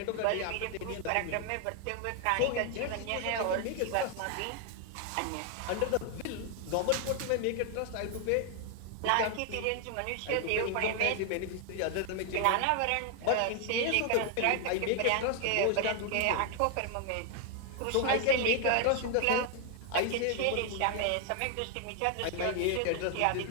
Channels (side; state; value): both; different; correlation 0.00